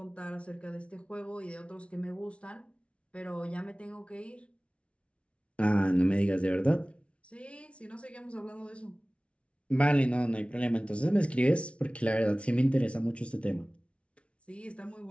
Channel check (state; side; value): late; right; 0.061 ms